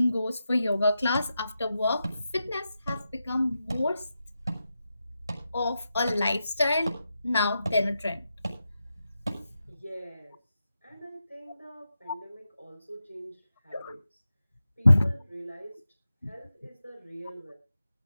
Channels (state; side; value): inverted; both; correlation -0.89